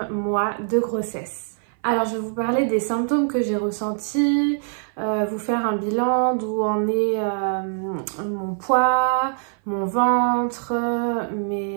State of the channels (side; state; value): left; silent; 58 dB below the other